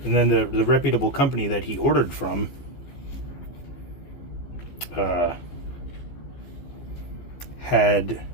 And then the reputable company that he ordered from had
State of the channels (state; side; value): late; right; 15 ms